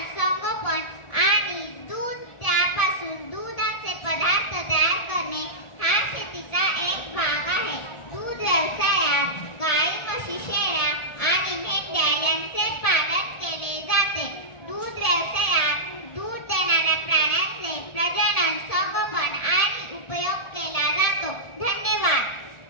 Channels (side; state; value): right; late; 1.4 ms